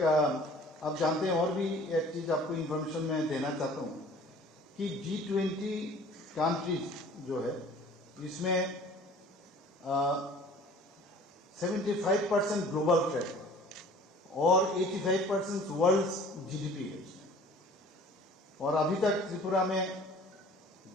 आप जानते हैं, और भी एक चीज़ आपको इन्फॉर्मेशन मैं देना चाहता हूँ कि G20 कंट्रीज जो है इसमें 75% ग्लोबल ट्रेड और 85% वर्ल्ड GDP है इसमें। और अभी तक त्रिपुरा में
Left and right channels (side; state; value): both; normal; correlation 0.48